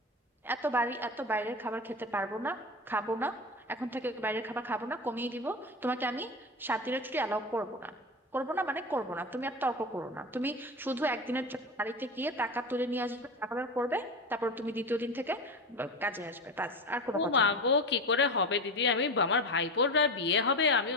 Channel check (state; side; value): normal; both; correlation 0.23